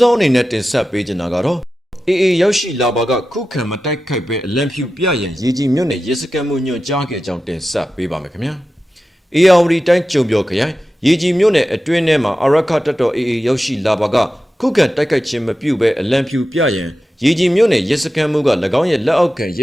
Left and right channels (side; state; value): both; normal; correlation 0.93